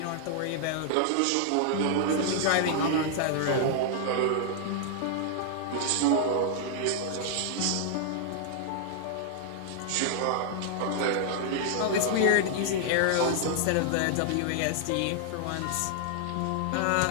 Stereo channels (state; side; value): different; both; correlation -0.01